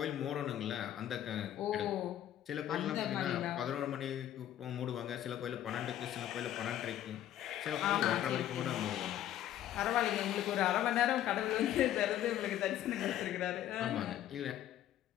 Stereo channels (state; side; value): quieter; right; 11.9 dB